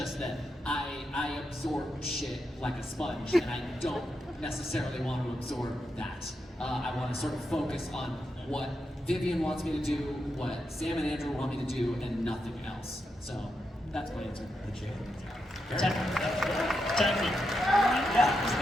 that I absorb shit like a sponge, and I don't necessarily want to absorb that. I want to sort of focus on what Vivian wants me to do, what Sam and Andrew want me to do, and nothing else. So that's my answer.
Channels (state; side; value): normal; both; correlation 0.85